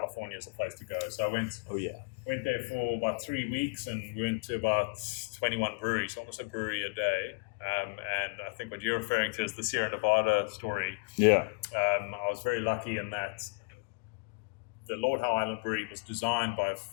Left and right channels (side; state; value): right; quieter; 32.3 dB